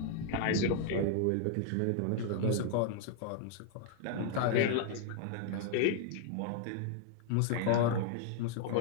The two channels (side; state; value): both; different; correlation -0.01